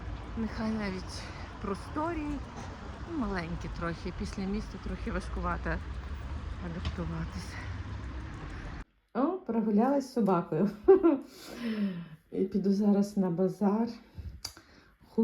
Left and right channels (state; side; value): identical; both; correlation 1.00